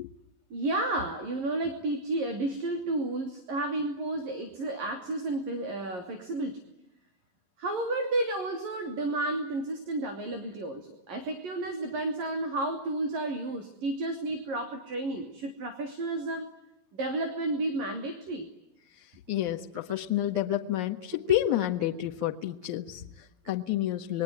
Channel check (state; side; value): late; left; 11 ms